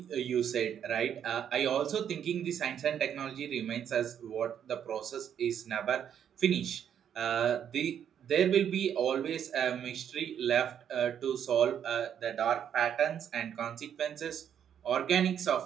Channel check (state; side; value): quieter; left; 9.0 dB